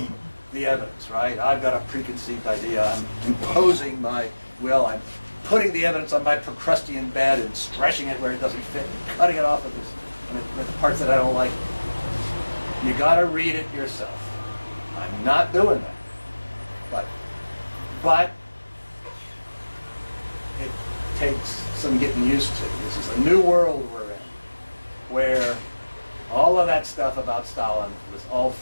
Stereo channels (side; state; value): both; inverted; correlation -1.00